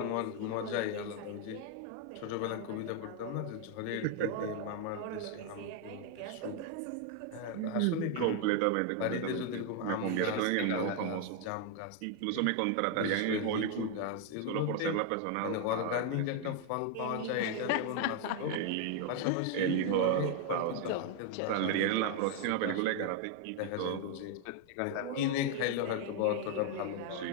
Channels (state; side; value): different; both; correlation 0.01